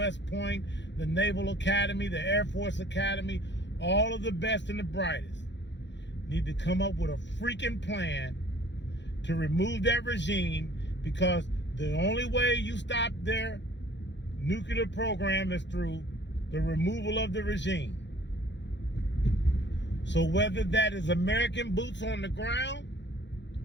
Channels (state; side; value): late; right; 0.52 ms